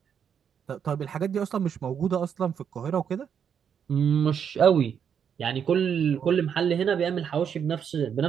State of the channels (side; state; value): left; quieter; 7.8 dB